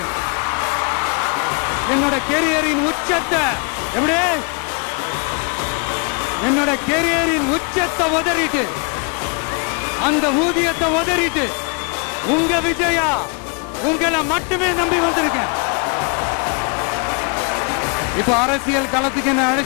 என்னோட கெரியரின் உச்சத்தை எப்படி என்னோட கெரியரின் உச்சத்தை உதறிட்டு, அந்த ஊதியத்தை உதறிட்டு உங்க விஜயா உங்களை மட்டுமே நம்பி வந்திருக்கேன். இப்ப அரசியல் களத்துக்கு என்ன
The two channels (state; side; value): quieter; right; 35.9 dB